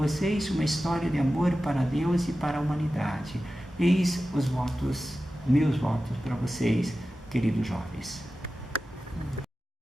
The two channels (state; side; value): normal; both; correlation 0.94